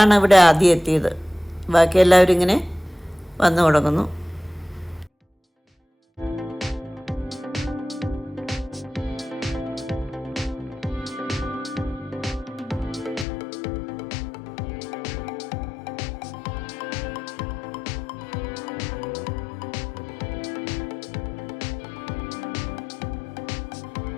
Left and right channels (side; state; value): right; drops out; at 13.2 s